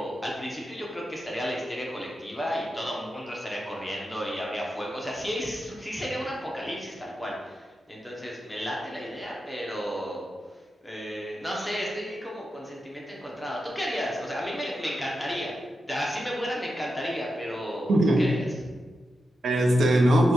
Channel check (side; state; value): both; normal; correlation 0.89